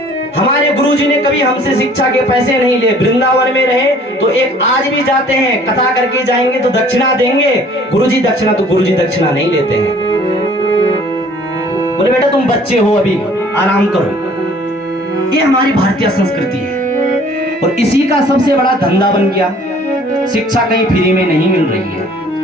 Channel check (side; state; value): both; normal; correlation 0.54